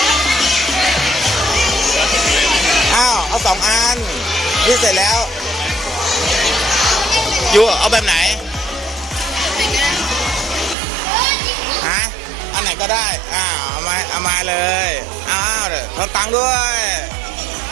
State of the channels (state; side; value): drops out; left; at 10.8 s